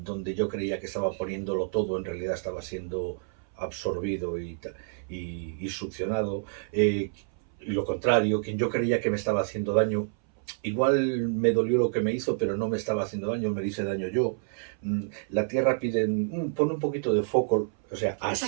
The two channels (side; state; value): left; silent; 58 dB below the other